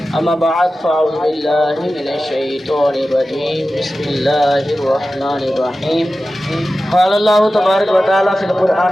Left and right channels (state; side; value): normal; both; correlation 0.94